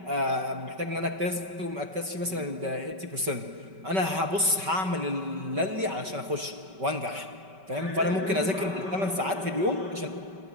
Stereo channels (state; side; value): late; left; 5.2 ms